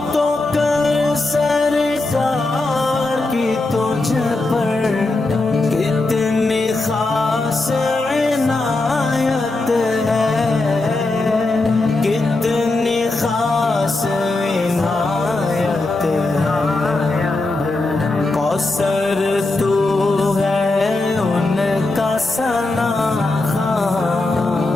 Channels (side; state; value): right; quieter; 3.1 dB